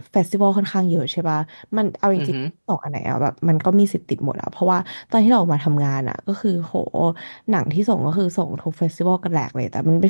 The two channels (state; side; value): inverted; both; correlation -1.00